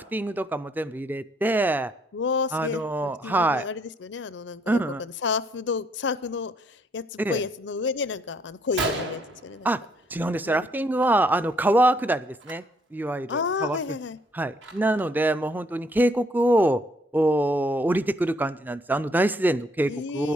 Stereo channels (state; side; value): normal; both; correlation 0.68